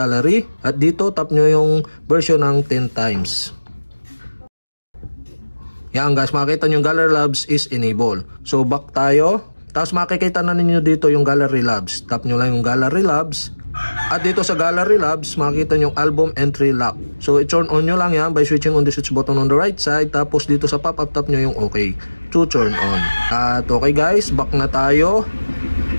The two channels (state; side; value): inverted; both; correlation -1.00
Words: at dito tap nyo yung version ng 10 times. Yan guys, makikita nyo yung Gallery Labs is enable. So back tayo. Tapos makikita na ninyo dito yung Gallery Labs. Tap nyo lang yung Gallery Labs. At dito sa Gallery Labs, makikita nyo yung Album Entry Lock. So i-turn on nyo lang yan by switching on the switch button on the right side. Tapos dito sa pop-up, tap nyo yung OK to turn on. At okay guys, back na tayo.